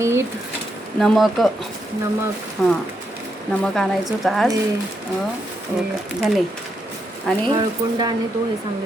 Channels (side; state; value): both; normal; correlation 0.81